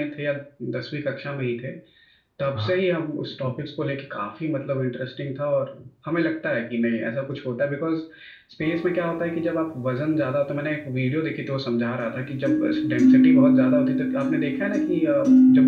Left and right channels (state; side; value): identical; both; correlation 1.00